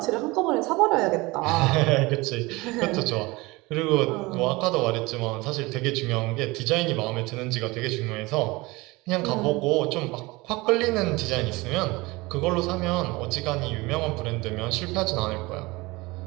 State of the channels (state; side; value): quieter; left; 22.7 dB